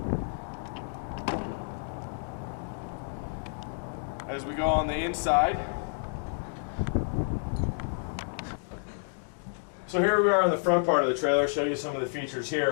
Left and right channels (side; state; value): right; silent; digital silence